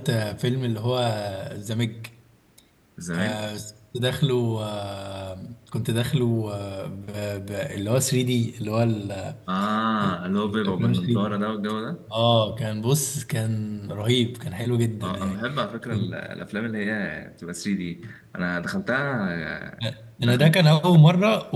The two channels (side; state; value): both; identical; correlation 1.00